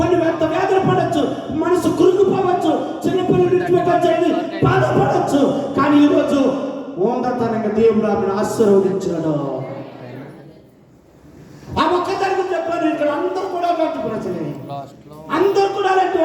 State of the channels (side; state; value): both; identical; correlation 1.00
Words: వ్యాధులు పడవచ్చు, మనసు కురుకుపోవచ్చు, చిన్నపిల్లలు బాధపడవచ్చు. కానీ ఈరోజు ఓందతనంగా దేవుడు ఆమెను ఆశీర్వదించాడు. ఆ ఒక్కదానికి చెప్పాను. ఇక్కడ అందరూ కూడా అలాంటి ప్రజలే, అందరూ కూడా అలాంటి